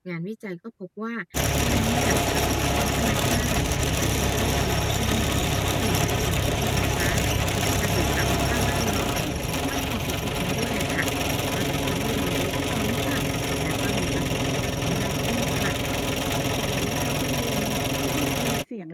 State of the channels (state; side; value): identical; both; correlation 1.00